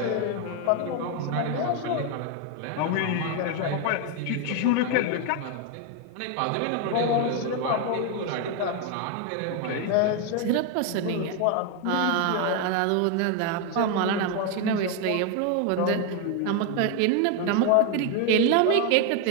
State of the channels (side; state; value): both; different; correlation 0.01